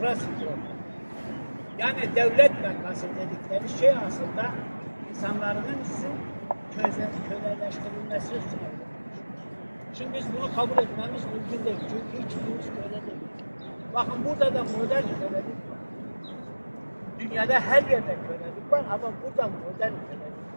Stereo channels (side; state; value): both; inverted; correlation -1.00